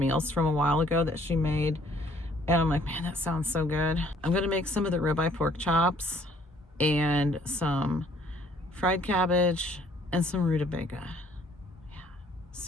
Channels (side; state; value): both; normal; correlation 0.61